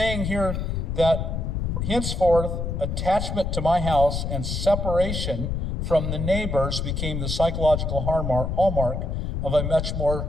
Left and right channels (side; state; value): left; noise; rumble, 2 dB below the sound